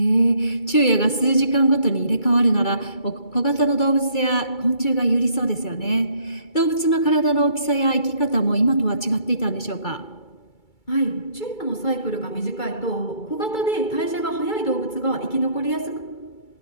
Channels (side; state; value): right; late; 2.3 ms